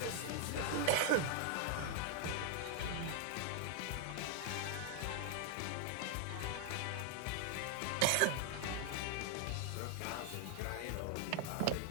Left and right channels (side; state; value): both; different; correlation 0.00